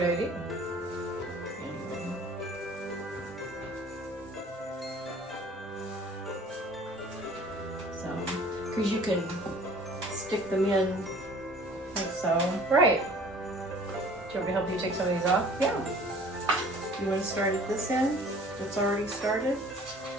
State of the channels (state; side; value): normal; both; correlation 0.50